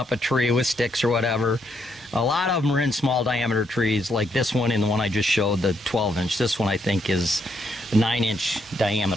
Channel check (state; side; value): normal; both; correlation 0.75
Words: a tree with sticks or whatever. A lot of them are in small diameter trees, like this one and the one I just showed, the 12-inch. This one I think is 9-inch